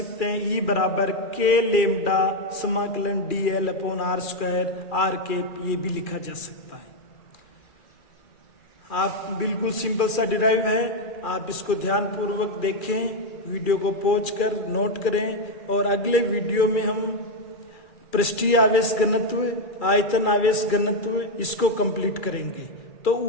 हैं, E बराबर k लेमडा समाकलन dl upon r square r के, ये भी लिखा जा सकता है। आप बिल्कुल सिंपल सा डिराइव है, आप इसको ध्यान पूर्वक देखें, वीडियो को पॉज कर नोट करें, और अगले वीडियो में हम पृष्ठीय आवेश घनत्व, आयतन आवेश घनत्व, इसको कंप्लीट करेंगे। तो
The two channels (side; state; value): right; late; 2.4 ms